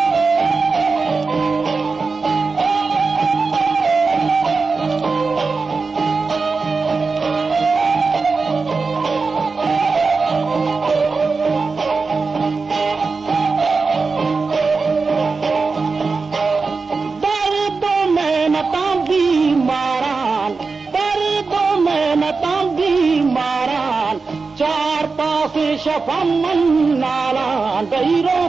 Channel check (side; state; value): left; quieter; 4.4 dB